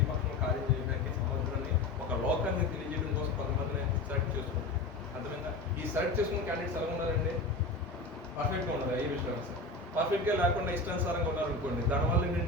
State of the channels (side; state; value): right; quieter; 3.2 dB